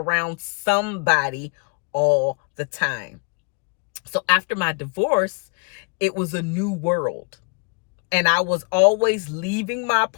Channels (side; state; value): right; quieter; 39.4 dB